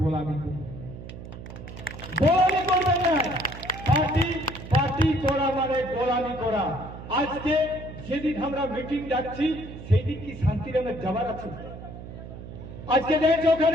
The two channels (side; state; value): right; noise; hum, 12 dB below the sound